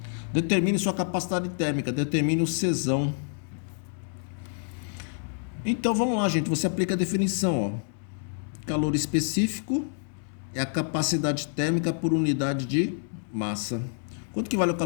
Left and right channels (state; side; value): silent; right; 60 dB below the other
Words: Determine sua capacidade térmica, determine o Czão. Então vamos lá, gente, você aplica a definição, ó. Calor específico é a capacidade térmica por unidade de massa. Quanto que vale o